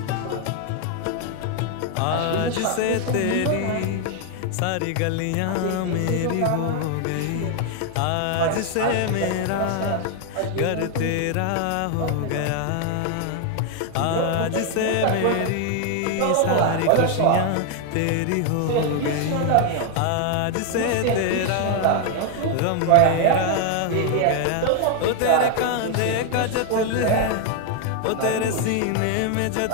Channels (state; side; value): different; both; correlation 0.00